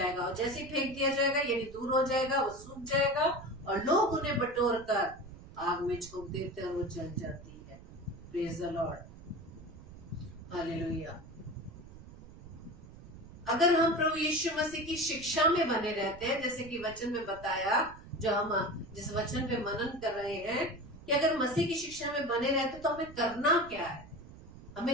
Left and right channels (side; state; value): right; noise; rumble, 17 dB below the sound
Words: और जैसे फेंक दिया जाएगा यानी दूर हो जाएगा, वो सूख जाएगा और लोग उन्हें बटोर कर आग में झोंक देते हैं और वो जल जाती है। Praise the Lord, hallelujah. अगर हम प्रभु यीशु मसीह की शिक्षा में बने रहते हैं, जैसे कि वचन में बताया, जो हम जिस वचन पे मनन कर रहे हैं, कि अगर मसीह की शिक्षा में बने रहते तो हमें करना क्या है,